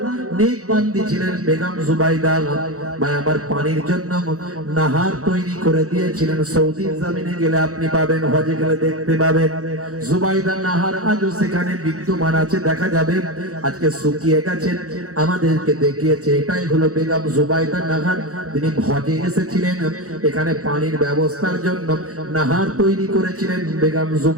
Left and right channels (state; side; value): late; left; 0.65 ms